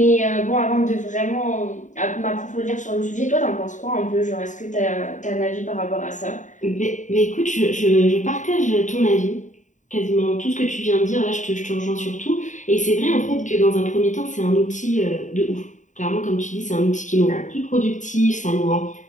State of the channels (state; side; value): late; right; 0.36 ms